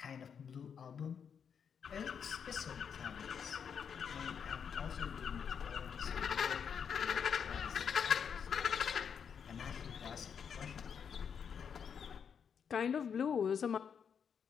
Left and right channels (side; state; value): right; quieter; 7.2 dB